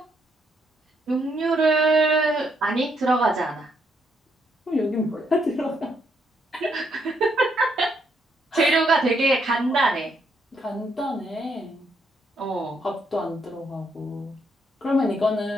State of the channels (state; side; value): normal; both; correlation 0.75